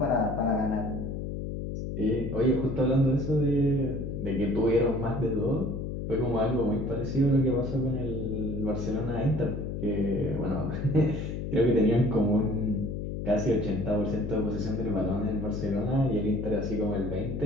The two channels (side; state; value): left; noise; hum, 4 dB below the sound